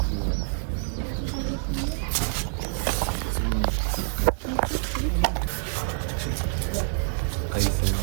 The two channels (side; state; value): left; silent; digital silence